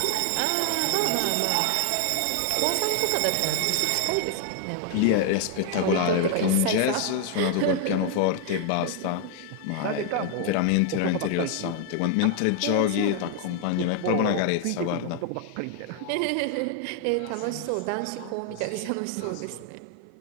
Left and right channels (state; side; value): different; both; correlation 0.00